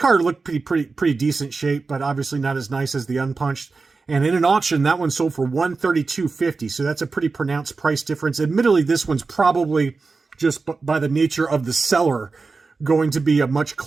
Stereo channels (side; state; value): left; quieter; 4.2 dB